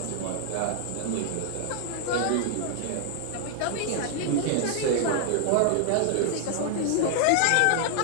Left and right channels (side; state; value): both; different; correlation 0.00